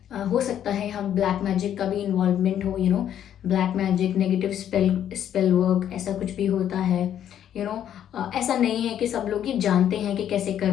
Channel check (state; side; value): quieter; right; 10.2 dB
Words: हो सकता है यहाँ ब्लैक मैजिक का भी इन्वॉल्वमेंट हो, black magic, negative spell work, ऐसा कुछ भी होता है। ऐसा नहीं है कि सब लोग ये जानते हैं कि कैसे